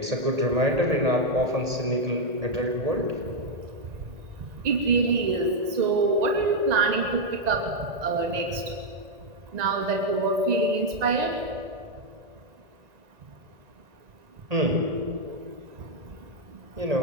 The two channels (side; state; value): left; late; 1.9 ms